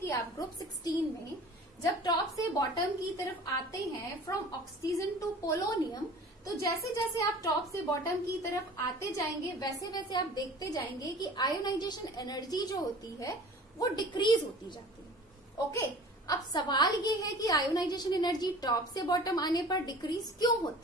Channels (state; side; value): normal; both; correlation 0.43